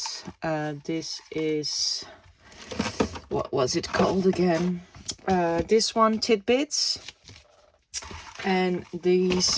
This is, what was it called again? This one, Tidbits. And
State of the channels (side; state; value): both; identical; correlation 1.00